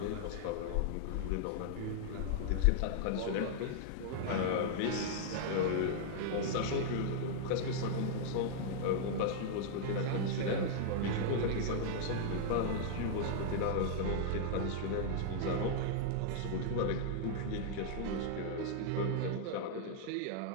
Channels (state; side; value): different; both; correlation -0.01